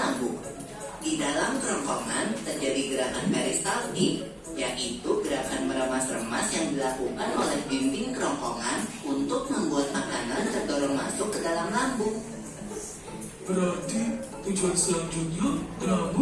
Di dalam kerongkongan terjadi gerakan peristaltik, yaitu gerakan meremas-remas yang dilakukan oleh dinding kerongkongan untuk membuat makanan terdorong masuk ke dalam lambung. Berarti tujuan selanjutnya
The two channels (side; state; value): both; identical; correlation 1.00